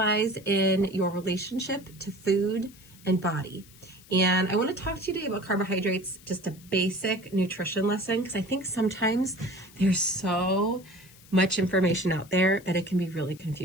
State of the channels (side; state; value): left; noise; hiss, 23 dB below the sound